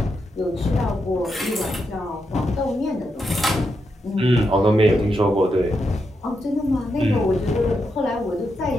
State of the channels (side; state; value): both; normal; correlation 0.84